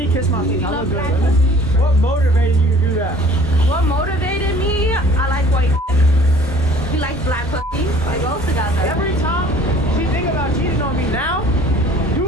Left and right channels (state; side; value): normal; both; correlation 0.51